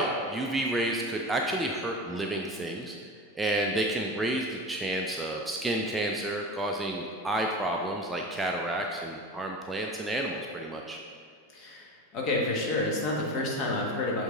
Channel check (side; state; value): both; normal; correlation 0.29